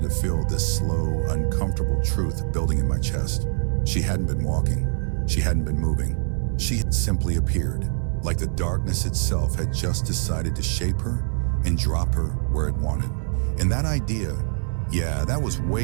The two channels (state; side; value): silent; left; digital silence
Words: to feel this slow, uncomfortable truth building in my chest. She hadn't been walking. She hadn't been moving. She had simply appeared, like the darkness itself had just decided to shape her and drop her where it wanted. And that idea, yeah, that was